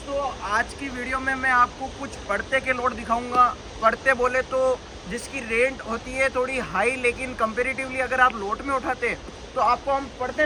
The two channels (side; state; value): both; identical; correlation 1.00